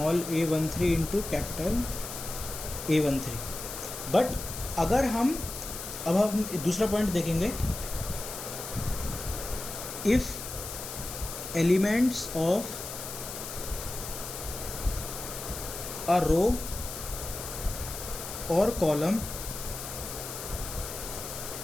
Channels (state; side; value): noise; left; hiss, 8 dB below the sound